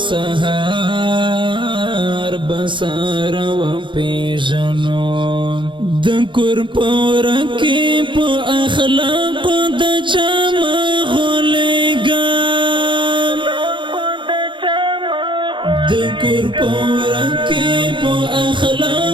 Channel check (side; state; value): left; late; 0.23 ms